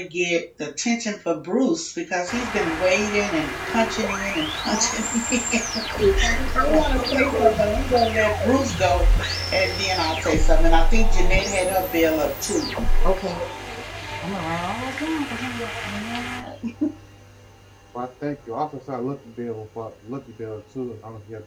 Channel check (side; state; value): both; identical; correlation 1.00